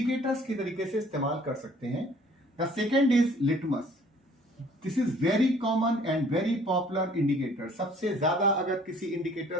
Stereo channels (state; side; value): normal; both; correlation 0.56